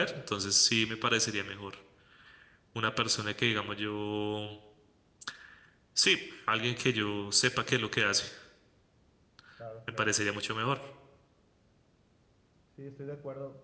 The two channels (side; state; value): both; identical; correlation 1.00